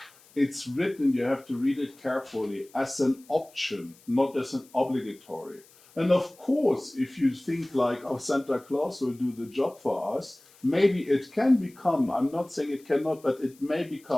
it's written, you have to read it carefully, as an option, not as an obligatory. And of course, if you think like, oh, Santa Claus will do the job for us, maybe it can become, I'm not saying it cannot, but it may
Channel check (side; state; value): left; noise; hiss, 27 dB below the sound